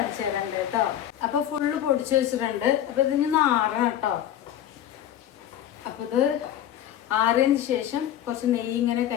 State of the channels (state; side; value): quieter; right; 11.2 dB